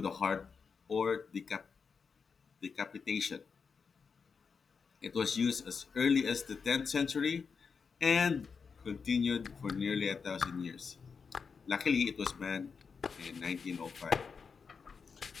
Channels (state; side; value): quieter; right; 5.6 dB